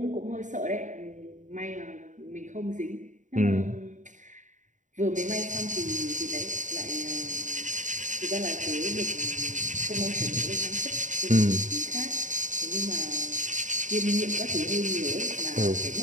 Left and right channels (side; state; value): left; late; 0.36 ms